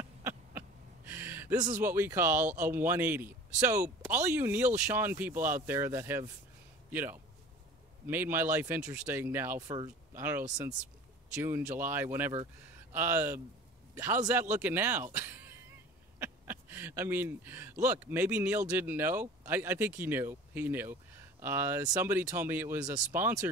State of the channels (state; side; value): normal; both; correlation 0.42